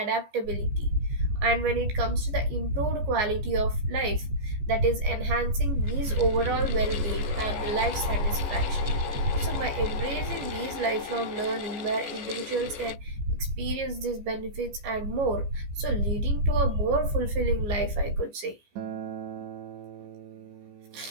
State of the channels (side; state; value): left; late; 14 ms